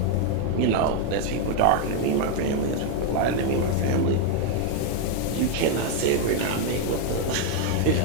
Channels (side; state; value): both; different; correlation 0.00